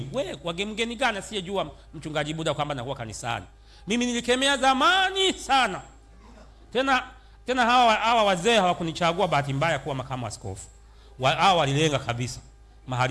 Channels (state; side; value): identical; both; correlation 1.00